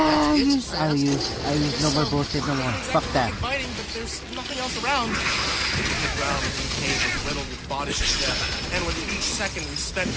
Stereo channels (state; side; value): identical; both; correlation 1.00